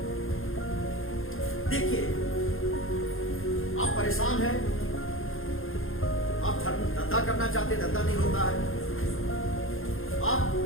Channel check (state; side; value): late; right; 0.60 ms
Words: देखिए, आप परेशान हैं, आप धंधा करना चाहते, धंधा नहीं होता है, आप